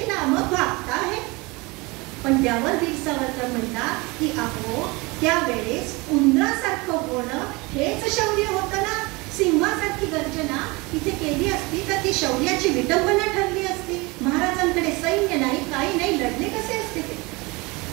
पण त्यावर वीर सावरकर म्हणतात की अहो त्यावेळेस उंदरासारखं होणं हेच शौर्य होतं ना. सिंहासारखी गर्जना तिथे केली असती तर ती शौर्याची विटंबना ठरली असती. महाराजांकडे सैन्य नाही, काही नाही, लढले कसे असते ते.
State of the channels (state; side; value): quieter; left; 25.1 dB